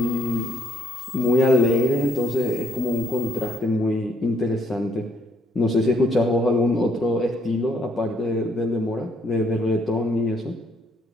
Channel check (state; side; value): normal; both; correlation 0.68